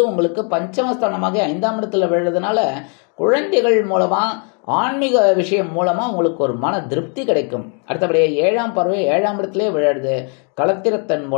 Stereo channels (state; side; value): quieter; right; 39.4 dB